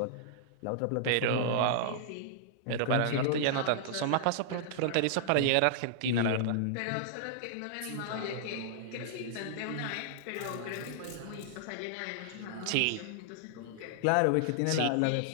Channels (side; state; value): both; different; correlation -0.01